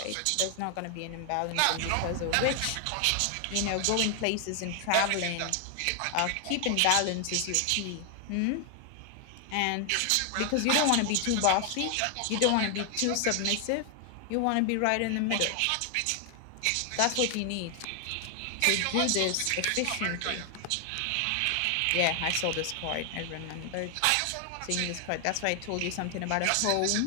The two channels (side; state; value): both; different; correlation 0.00